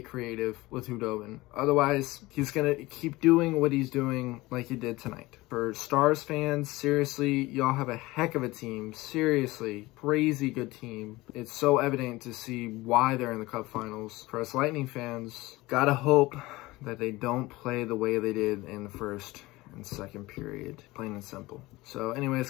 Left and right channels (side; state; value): right; quieter; 20.1 dB